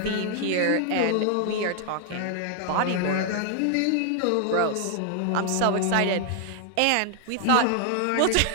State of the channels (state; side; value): different; both; correlation 0.00